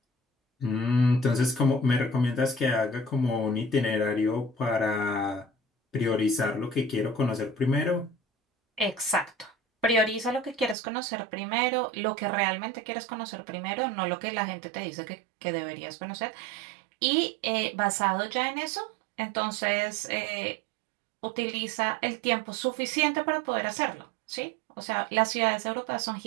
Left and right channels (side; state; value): left; drops out; at 10.8 s